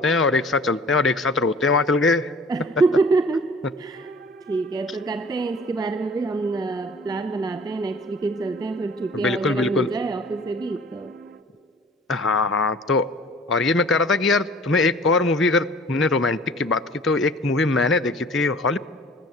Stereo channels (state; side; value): normal; both; correlation 0.48